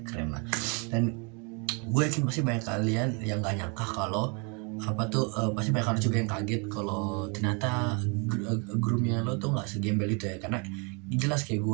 keren lah. Dan gue yakin pasti banyak kalian yang gak nyangka kalau pasti banyak orang juga yang kaget kalau ternyata groomnya lo tuh nggak segembel itu ya, karena jelas kayak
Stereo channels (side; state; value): left; quieter; 33.9 dB